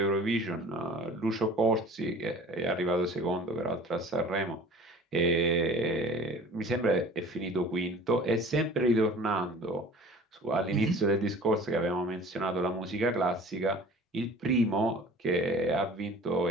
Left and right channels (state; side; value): normal; both; correlation 0.44